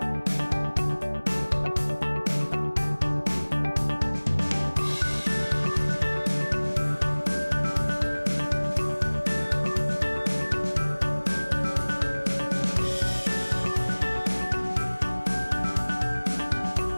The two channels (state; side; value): inverted; both; correlation -1.00